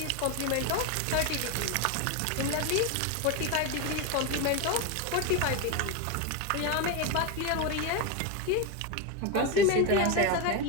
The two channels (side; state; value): both; different; correlation 0.02